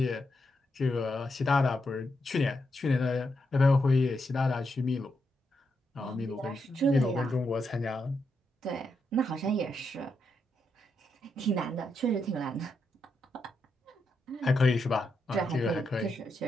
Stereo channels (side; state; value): both; normal; correlation 0.82